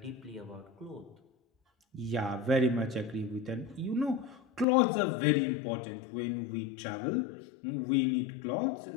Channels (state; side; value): drops out; right; at 4.7 s